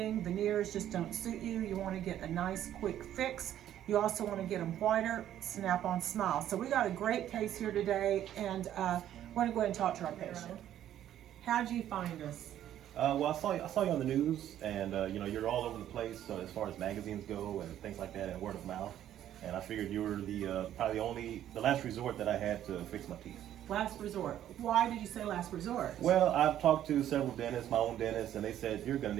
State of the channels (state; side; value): quieter; left; 11.5 dB